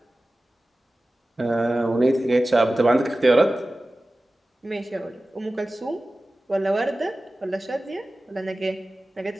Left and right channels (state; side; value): normal; both; correlation 0.96